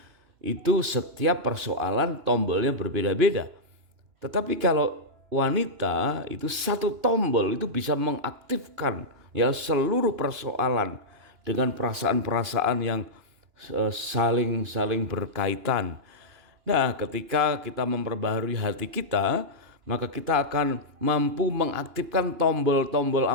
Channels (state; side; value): late; left; 2.9 ms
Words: itu setiap persoalan tombolnya berbeda-beda. Tetapi kalau wanita itu satu tombol itu bisa mengaktifkan ya seluruh persoalan dengan perasaan-perasaan yang saling berkaitan. Nah, ketika kita memperbaharui hati kita, maka kita akan mampu mengaktifkan tombol-tombol